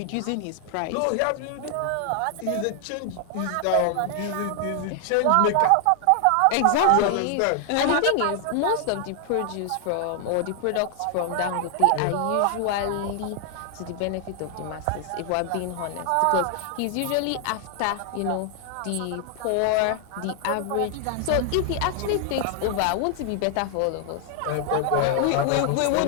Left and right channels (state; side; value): different; both; correlation 0.00